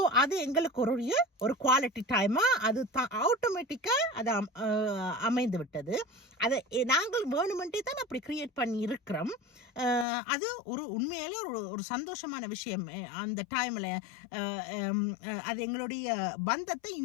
அது எங்களுக்கு ஒரு குவாலிட்டி டைமா அது ஆட்டோமேட்டிக்கா அது அமைந்து விட்டது. அதை நாங்கள் வேணுமென்றே தான் அப்படி கிரியேட் பண்ணி இருக்கிறோம். அது உண்மையிலே ஒரு சந்தோஷமான விஷயம். அந்த டைம்ல அது எங்களுடைய பந்தத்தை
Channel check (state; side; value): drops out; right; at 10.1 s